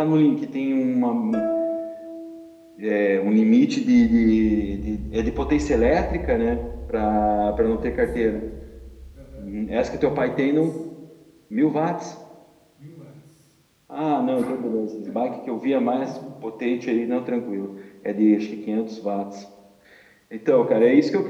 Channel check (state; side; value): identical; both; correlation 1.00